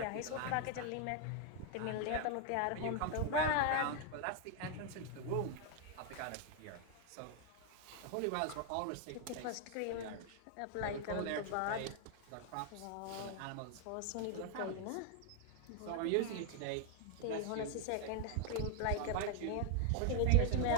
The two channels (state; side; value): different; both; correlation 0.00